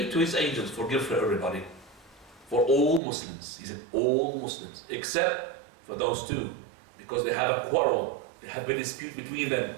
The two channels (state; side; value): drops out; left; at 3.0 s